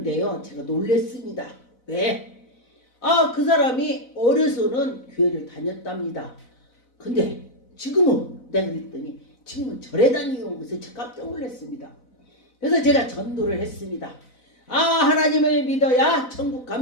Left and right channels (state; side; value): late; right; 4.0 ms